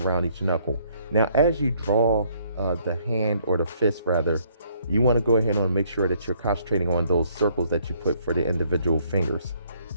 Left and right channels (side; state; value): both; inverted; correlation -0.66